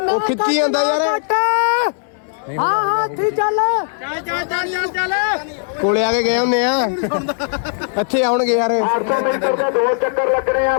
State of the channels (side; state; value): right; silent; digital silence